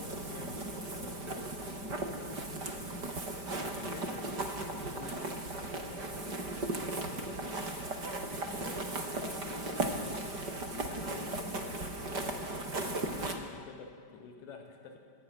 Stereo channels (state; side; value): late; left; 5.1 ms